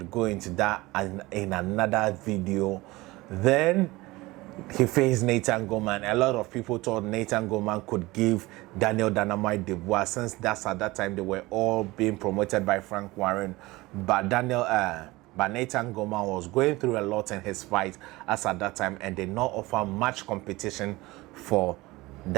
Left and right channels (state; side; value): quieter; left; 20.6 dB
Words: into that in another video. Then he faced Nathan Gorman. A lot of people thought Nathan Gorman could give Daniel Dynamite Dubois, since that's at that time they were all being promoted by Frank Warren. But Nathan Gorman was going through a lot in his fight as at that time and did not offer much competition for